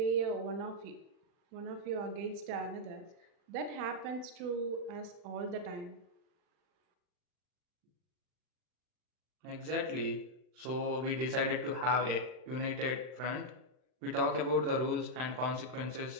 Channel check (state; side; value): late; left; 39 ms